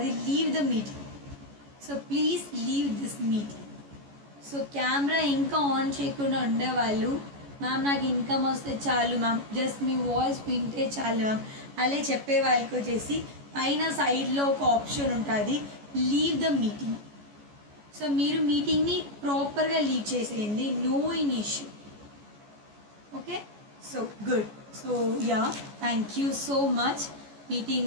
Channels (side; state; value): left; late; 14 ms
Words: leave the meeting. So please leave this meeting. So camera ఇంకా ఆన్ చేయకుండా ఉండేవాళ్ళు, మ్యామ్ నాకు ఇన్కమ్ వస్తే చాలు మ్యామ్, జస్ట్ మీ వాయిస్ వింటే చాలు మ్యామ్ అలా చెప్పే వాళ్ళకి వచ్చేసి పైన సైడ్లో ఒక ఆప్షన్ ఉంటుంది, లీవ్ ద మీటింగ్. సో మీరు మీటింగ్ని ప్రాపర్గా లీవ్ చేసేయండి, no in issue, okay? So good. So thank you so much.